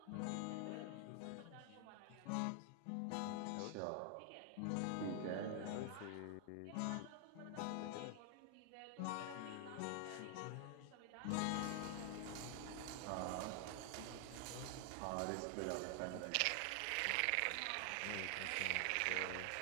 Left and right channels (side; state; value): both; different; correlation 0.00